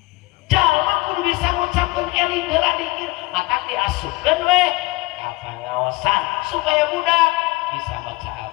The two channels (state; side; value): quieter; right; 21.1 dB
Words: jalma kudu bisa ngucapkeun eling heula zikir mata diasupkeun we ka pangaosan supaya budak bisa baca